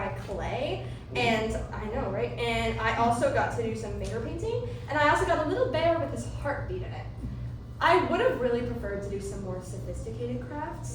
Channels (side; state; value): both; identical; correlation 1.00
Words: clay, and I know, right? And I also got to do some finger painting, and I also got a little bear with his heartbeat in it. I would have really preferred to do some more sophisticated